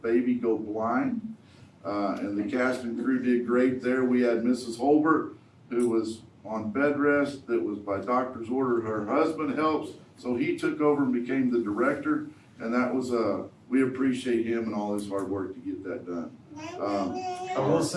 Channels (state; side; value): identical; both; correlation 1.00